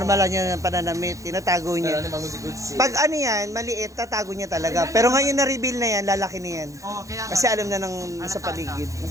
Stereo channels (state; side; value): late; left; 0.15 ms